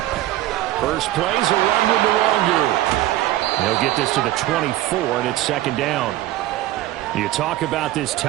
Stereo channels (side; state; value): left; quieter; 15.0 dB